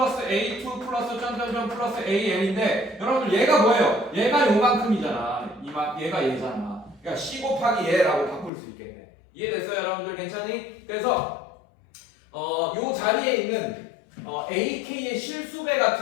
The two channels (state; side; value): drops out; right; at 8.5 s